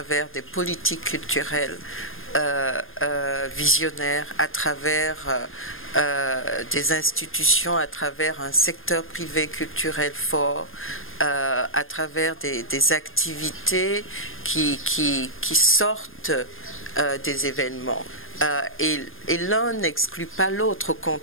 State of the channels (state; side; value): late; right; 0.59 ms